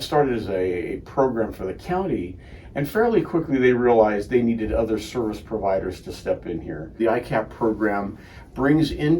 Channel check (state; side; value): identical; both; correlation 1.00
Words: started as a program for the county, and fairly quickly they realized they needed other service providers to step in here. The EICAP program brings